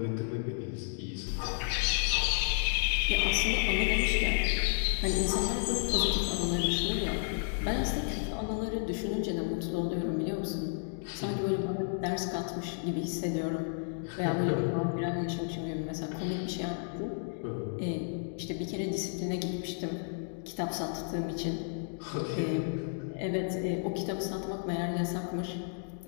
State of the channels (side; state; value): right; silent; digital silence